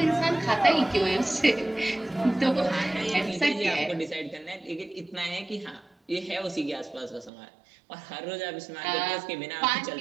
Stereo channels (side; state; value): left; drops out; at 7.3 s